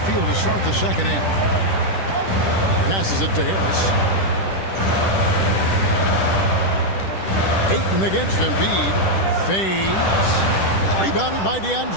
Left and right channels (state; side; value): late; right; 10 ms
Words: field to start the second half. Passes it to Harris. Ayton against Embiid. Fades. Rebounded by